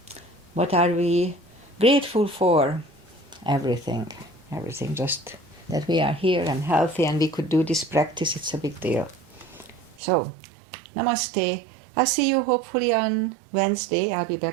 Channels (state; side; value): drops out; left; at 10.0 s